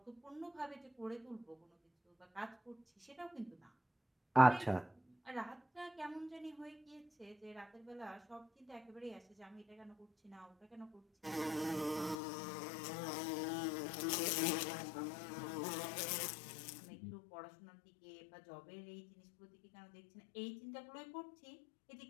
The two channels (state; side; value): drops out; right; at 12.2 s